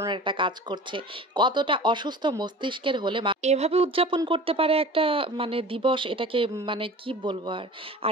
একটা কাজ করছে। কতটা অসুস্থ মস্তিষ্কের হলে এভাবে উদযাপন করতে পারে একটা দিবস, এটাকে কি বলবো আর।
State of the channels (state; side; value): normal; both; correlation 0.39